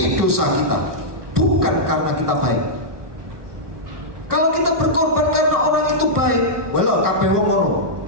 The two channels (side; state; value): left; late; 1.3 ms